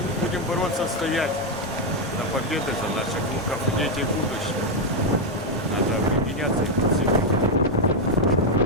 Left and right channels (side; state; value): both; normal; correlation 0.02